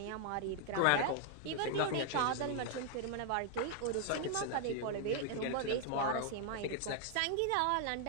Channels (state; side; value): different; both; correlation 0.00